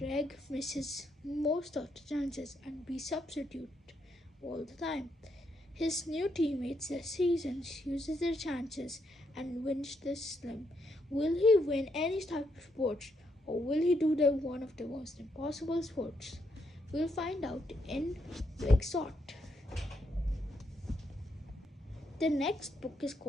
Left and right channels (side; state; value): both; normal; correlation 0.78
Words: misses most of the chances and be substitute all the time. His new teammates this season uses their chances and wins the slim. Will he win any type of sports, or will he do one of the most impossible sports? We'll find out in Big Shot. The next book is